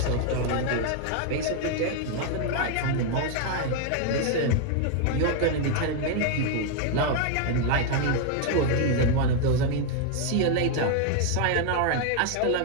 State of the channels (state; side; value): different; both; correlation 0.00